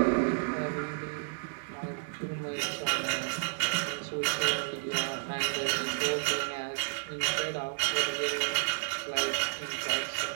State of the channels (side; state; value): left; silent; digital silence